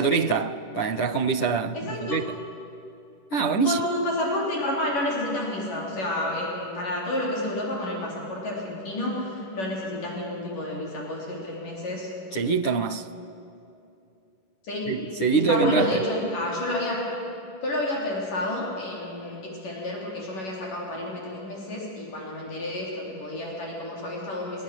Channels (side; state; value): right; late; 10 ms